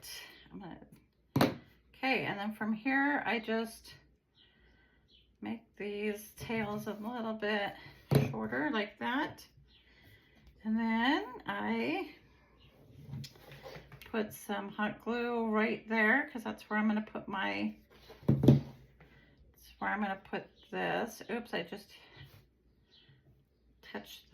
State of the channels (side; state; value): both; identical; correlation 1.00